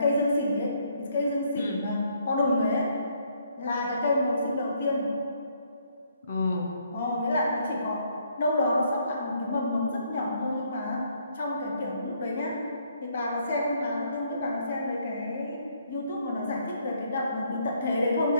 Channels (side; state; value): both; inverted; correlation -0.69